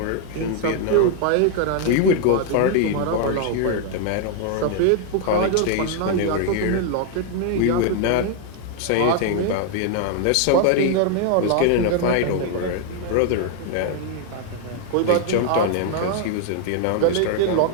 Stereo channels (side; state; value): both; different; correlation 0.00